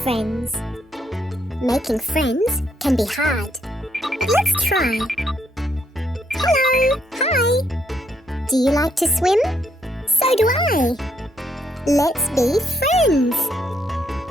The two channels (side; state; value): both; normal; correlation 0.74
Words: friends. Making friends can be hard. Let's try. Hello, hi. Do you like to swim? So do I. Let's be friends.